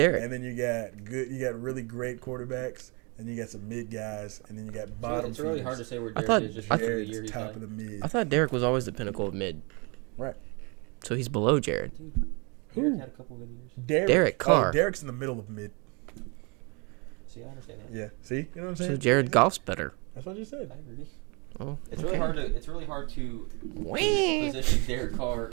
and then you got really great quarterbacks, and you got some mid guys, and then you got mid. bottom. It's really hard to say where I Derek thought- is just I because of the Jared's year he's top had. of the mid. I thought Derek was always the pinnacle of mid. Right. So he's below Jared. Derek Who? had a couple good years. Derek Carr. Oh, Derek's in the middle of mid. See, I understand that. Yeah. See, you know what I'm saying? So Jared Goff's better. That's what you said. I agree. Oh, It's okay. really hard to Wah. position Derek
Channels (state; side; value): quieter; left; 31.5 dB